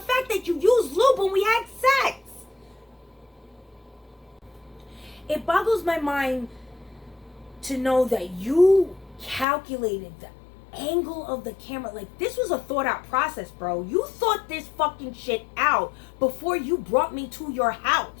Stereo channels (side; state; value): right; drops out; at 9.5 s